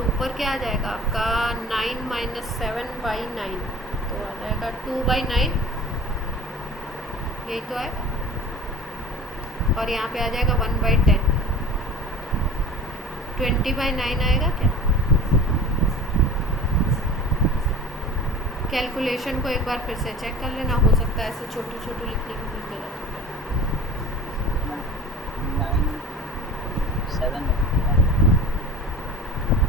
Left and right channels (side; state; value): both; normal; correlation 0.39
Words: ऊपर क्या आ जाएगा आपका 9 - 7/9, तो आ जाएगा 2/9, यही तो आएगा। और यहाँ पे आ जाएगा 1/10, 20/9 आएगा क्या। कैलकुलेशन को एक बार फिर से चेक कर लेना, हो सकता है ऐसे छोटू लिखने की कुछ गलत हो जाए। 9 7